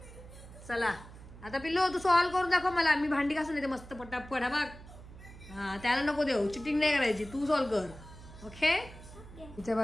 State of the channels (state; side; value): noise; right; hum, 17 dB below the sound